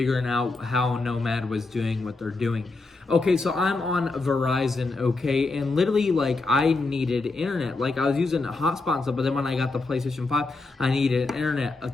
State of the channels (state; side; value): quieter; right; 3.6 dB